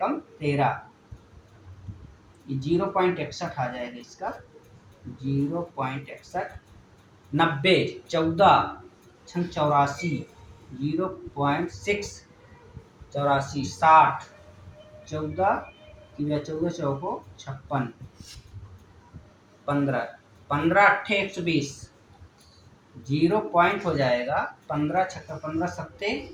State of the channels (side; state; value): both; identical; correlation 1.00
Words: 13, ये 0.61 आ जाएगा इसका, 0.61, 90, 14 छंग 84, 0.6 84, 60, 14 तिया 14 चौको 56, 15, 15 अट्ठे 120, 0 पॉइंट हो जाएगा, 15 छक्का 15 सत्ते